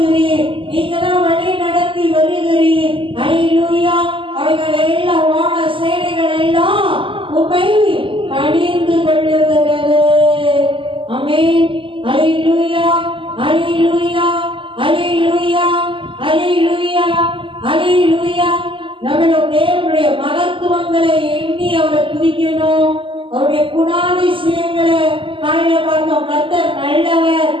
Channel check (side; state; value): left; late; 0.25 ms